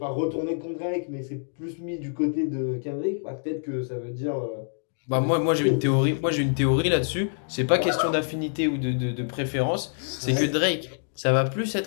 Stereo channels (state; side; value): silent; right; digital silence